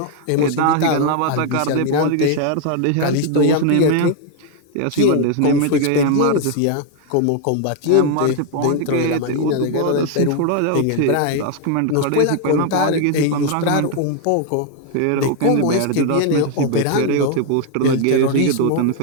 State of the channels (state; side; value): different; both; correlation 0.00